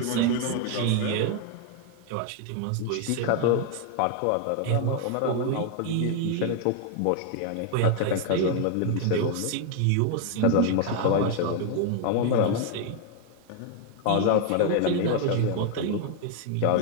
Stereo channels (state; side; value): different; both; correlation 0.00